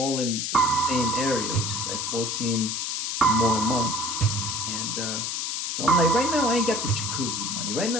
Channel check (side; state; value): left; noise; hiss, 2 dB below the sound